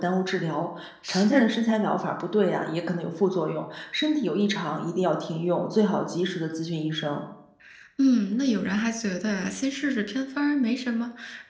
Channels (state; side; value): identical; both; correlation 1.00